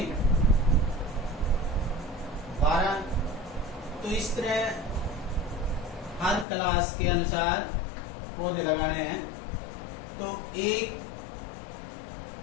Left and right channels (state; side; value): drops out; right; at 6.5 s